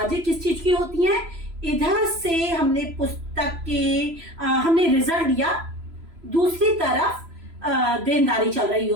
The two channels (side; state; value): left; late; 3.0 ms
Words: किस चीज की होती हैं? इधर से हमने पुस्तक के हमने रिजल्ट दिया, दूसरी तरफ देनदारी चल रही